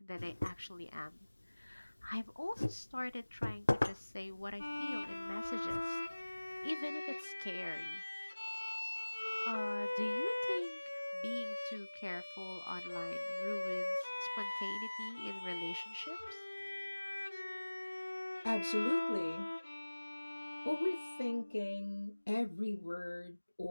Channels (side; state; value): both; inverted; correlation -1.00